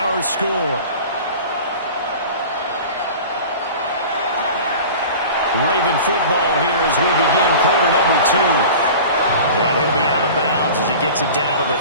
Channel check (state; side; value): inverted; both; correlation -0.38